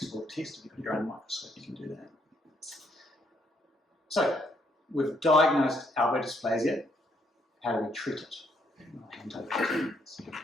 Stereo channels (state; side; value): normal; both; correlation 0.72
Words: test. If you've got your own microscope, you can do that. So we've diagnosed elbow dysplasia. How do we treat it? I'll hand over to